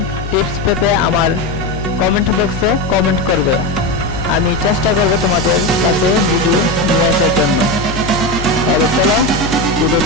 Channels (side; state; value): left; noise; hum, 8 dB below the sound